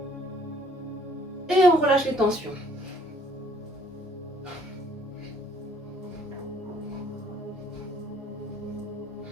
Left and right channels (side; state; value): both; normal; correlation 0.61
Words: Et on relâche les tensions.